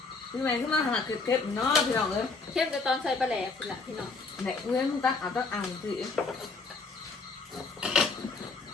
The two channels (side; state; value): right; quieter; 4.1 dB